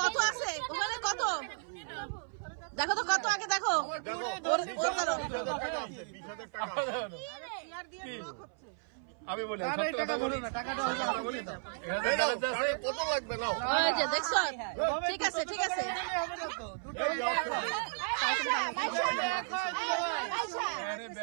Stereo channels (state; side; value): silent; left; 55 dB below the other